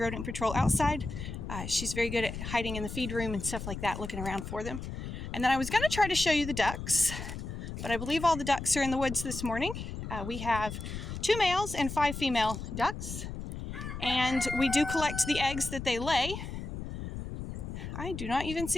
patrol outside. She's very good at hiding in the feed room and stuff like that, looking around for them. And then I was going to try to show you the ducks, but I believe all the ducks are in the woods this morning. We have 2 males and 5 female ducks, and we do collect the eggs that they lay. I do not even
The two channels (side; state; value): left; noise; rumble, 7 dB below the sound